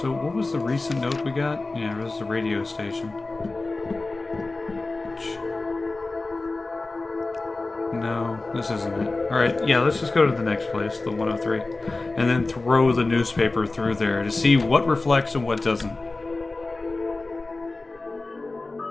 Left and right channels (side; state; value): right; quieter; 3.3 dB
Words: So what was the recent note we got? Yeah, it was the radio station. No, this isn't it. Alright, yeah, let's just go to the next place, the 103. And then throw the newspaper through there to see what reflects and what doesn't.